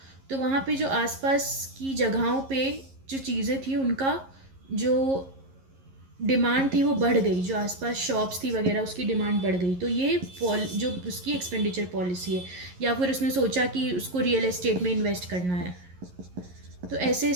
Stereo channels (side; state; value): left; late; 11 ms